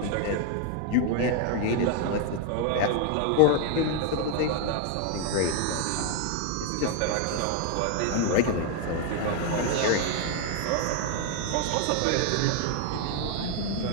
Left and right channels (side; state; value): both; different; correlation 0.00